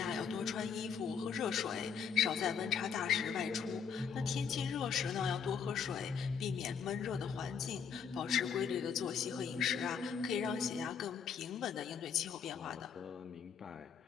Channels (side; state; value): right; quieter; 6.8 dB